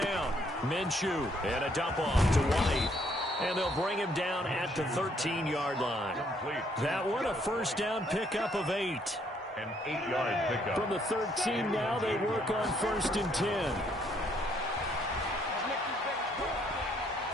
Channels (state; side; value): normal; both; correlation 0.68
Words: down. Minshew and a dump off to White. And they'll bring him down at the 13-yard line. That one, a 1st down pickup of 8. An 8-yard pickup. From the 13 now, they work on 1st and 10.